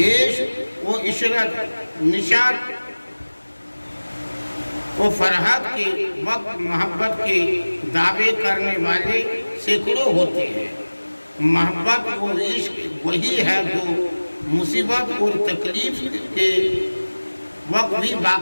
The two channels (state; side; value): inverted; both; correlation -1.00